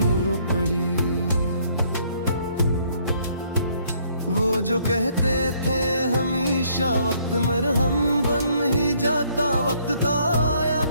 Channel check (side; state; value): both; inverted; correlation -0.66